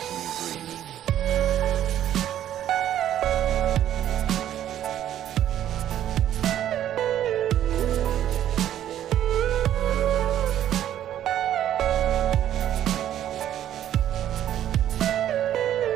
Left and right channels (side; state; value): left; quieter; 11.3 dB